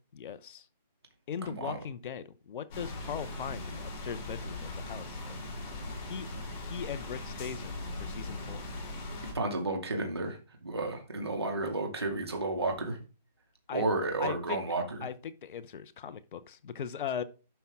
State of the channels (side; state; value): both; inverted; correlation -0.43